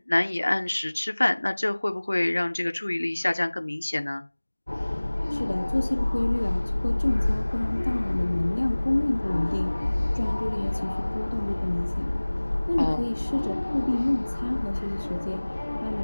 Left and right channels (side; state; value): both; inverted; correlation -1.00